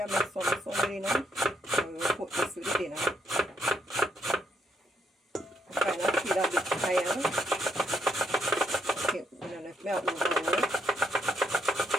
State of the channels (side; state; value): both; normal; correlation 0.76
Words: I make some Sunday dinner. So we will put this with the dinner. I kind of feel a bit tired. Okay, I don't know if I overwork.